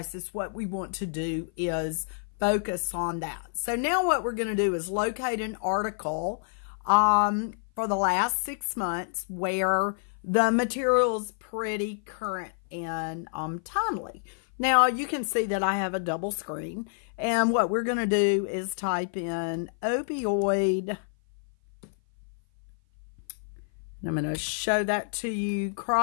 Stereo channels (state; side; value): silent; right; 55 dB below the other